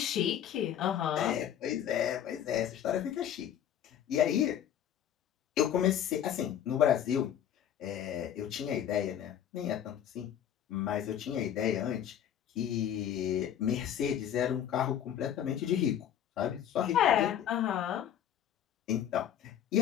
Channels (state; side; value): quieter; right; 10.0 dB